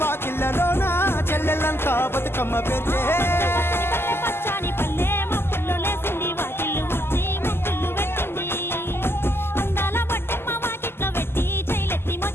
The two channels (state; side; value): late; right; 0.12 ms